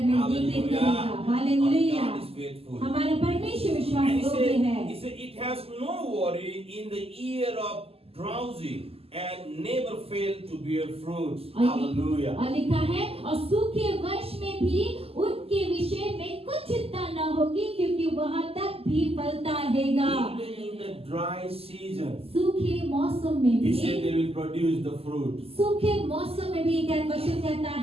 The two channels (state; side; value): late; left; 0.28 ms